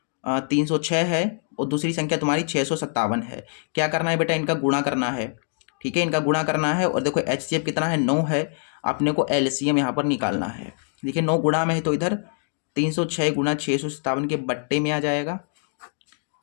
306 है और दूसरी संख्या तुम्हारी 657 है। क्या करना है बेटा, इनका गुणा करना है। ठीक है, इनका गुणा करना है, और देखो HCF कितना है 9 है, अपने को LCM यहाँ पर निकालना है। देखिए 9 गुणा में है तो इधर 306 गुणा 657 के बट्टे में आ जाएगा,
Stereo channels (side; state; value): right; silent; 57 dB below the other